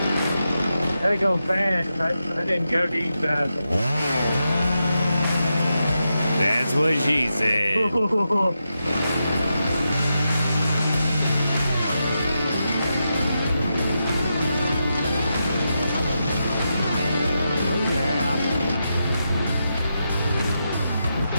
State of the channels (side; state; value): both; inverted; correlation -0.87